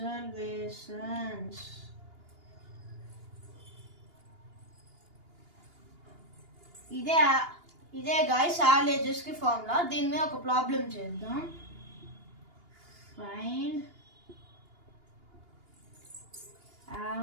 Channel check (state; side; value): late; left; 2.8 ms